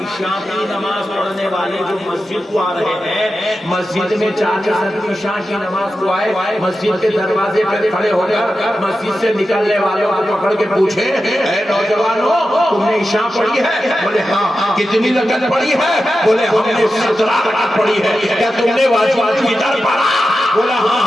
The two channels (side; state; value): both; normal; correlation 0.91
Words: عشاء کی نماز پڑھنے والے جو مسجد کو آ رہے ہیں، مسجد میں 40 آدمی عشاء کی نماز کو آئے، مسجد کے دروازے پہ کھڑے ہو کر مسجد سے نکلنے والوں کو پکڑ کے پوچھے، اے نوجوانوں تم نے عشاء پڑھی ہے؟ بولے ہاں۔ کتنی رکعت پڑھی ہے؟ بولے ہم نے 17 رکعت پڑھی ہے۔ کیا تم نے واجب الفطر پڑھا؟ بولا ہاں